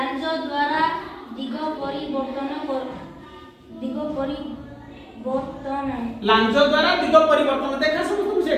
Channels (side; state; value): both; identical; correlation 1.00